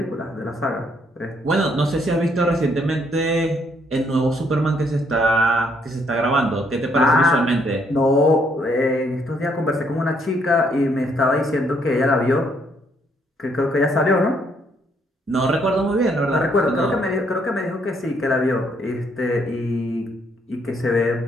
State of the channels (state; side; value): normal; both; correlation 0.70